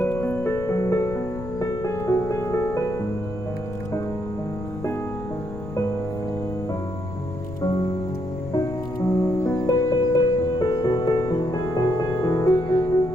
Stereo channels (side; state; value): left; noise; rumble, 11 dB below the sound